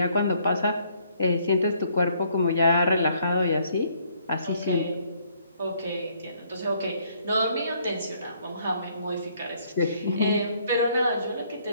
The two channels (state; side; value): inverted; both; correlation -0.66